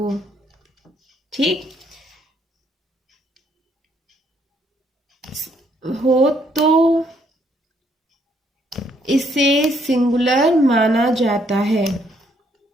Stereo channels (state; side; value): normal; both; correlation 0.70